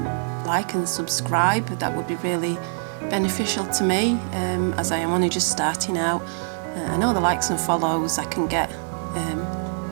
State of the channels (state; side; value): silent; left; digital silence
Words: like and subscribe. That would be really beneficial to me, as I am only just starting out. I know the likes and follows I can get